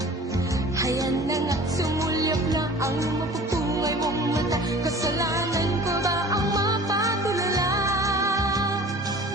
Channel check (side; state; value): both; normal; correlation 0.44